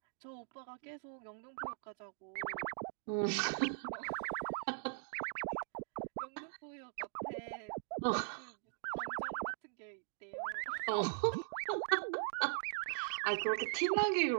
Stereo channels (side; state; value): left; silent; digital silence